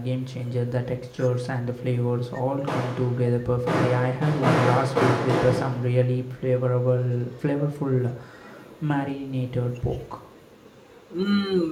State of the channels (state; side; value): identical; both; correlation 1.00